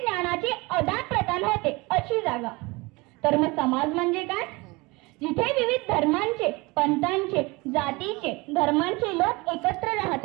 आदान-प्रदान होते अशी जागा. तर मग समाज म्हणजे काय, जिथे विविध धर्मांचे, पंथांचे, जातीचे, धर्मांचे लोक एकत्र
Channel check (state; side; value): quieter; left; 24.6 dB